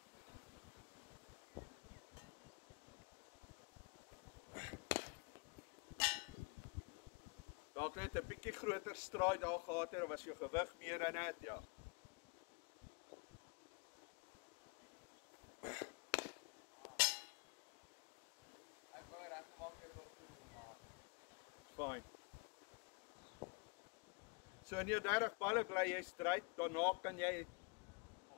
dalk net 'n bietjie groter straai daar gehad het, of was jou gewig meer in dit, ja. Ek wou reggemaak het tot toe, maar Fine. So in jou 30 balle bly jy stryd, daarna kan jy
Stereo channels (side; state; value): right; quieter; 31.6 dB